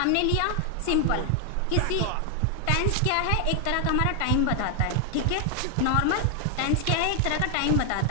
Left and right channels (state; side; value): different; both; correlation 0.00